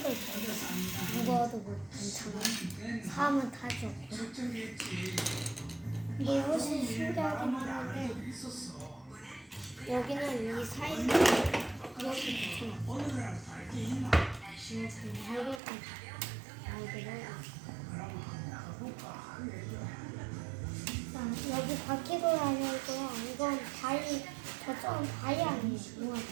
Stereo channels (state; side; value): drops out; left; at 15.6 s